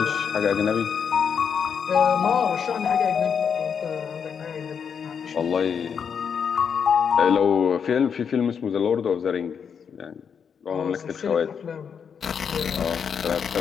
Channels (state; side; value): quieter; right; 7.0 dB